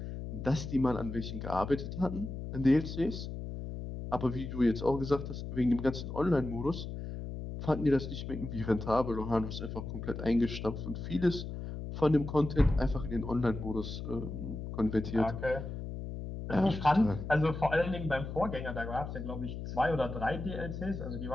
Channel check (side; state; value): left; noise; hum, 7 dB below the sound